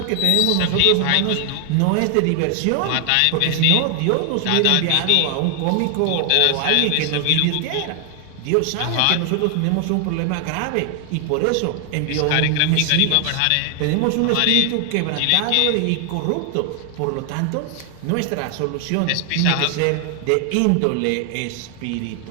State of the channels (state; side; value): different; both; correlation 0.00